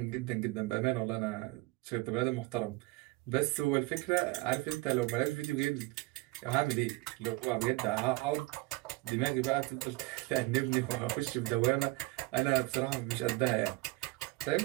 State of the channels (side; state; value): left; quieter; 22.1 dB